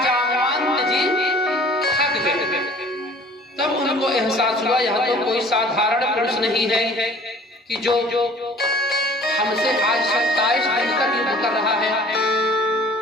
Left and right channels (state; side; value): normal; both; correlation 0.50